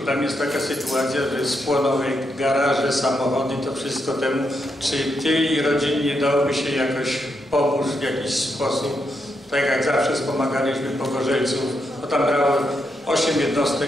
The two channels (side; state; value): both; normal; correlation 0.81